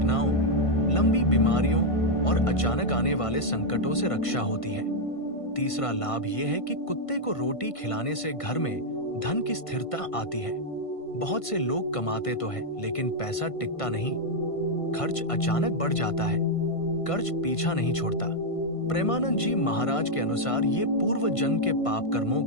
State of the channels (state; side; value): late; right; 1.5 ms